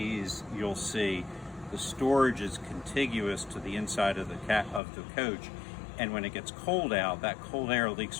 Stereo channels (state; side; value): drops out; right; at 4.8 s